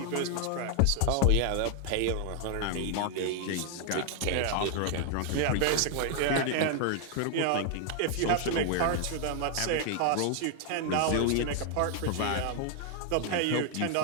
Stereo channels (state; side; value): different; both; correlation 0.00